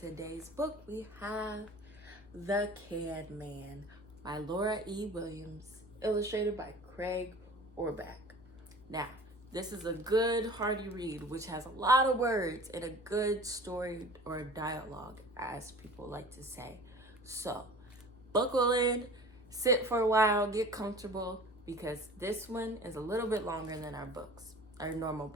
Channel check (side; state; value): both; normal; correlation 0.42